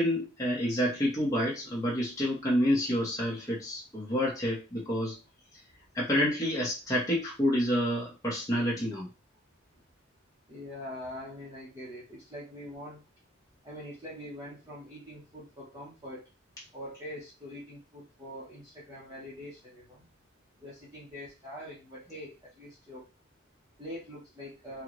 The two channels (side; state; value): both; normal; correlation 0.65